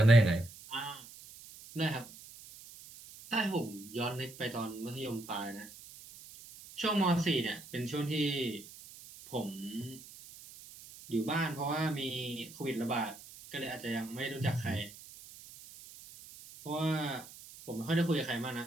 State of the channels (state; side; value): noise; right; hiss, 17 dB below the sound